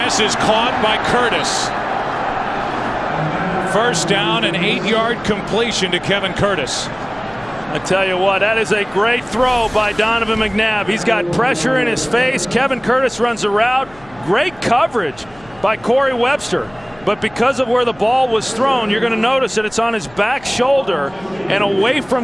is caught by Curtis. 1st down, an 8-yard completion to Kevin Curtis. I tell you what, that is a great throw by Donovan McNabb. He's got pressure in his face. Kevin Curtis runs a route. Great coverage by Corey Webster. But because of where the ball was thrown, you're going to notice that it's on his back shoulder and away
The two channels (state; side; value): noise; left; hum, 24 dB below the sound